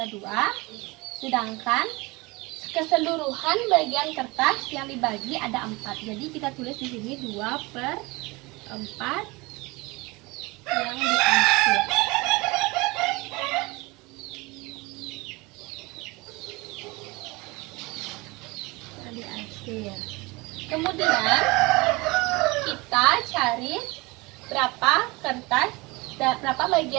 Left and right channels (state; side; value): quieter; left; 24.3 dB